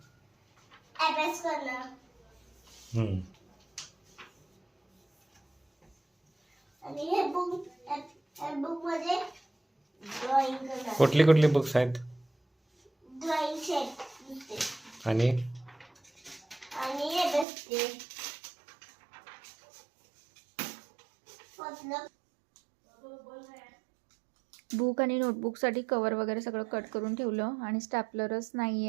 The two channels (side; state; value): left; drops out; at 17.4 s